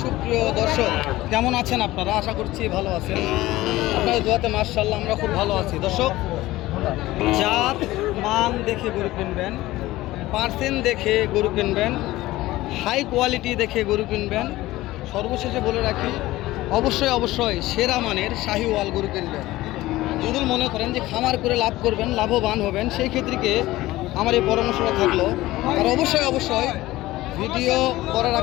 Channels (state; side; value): quieter; right; 17.4 dB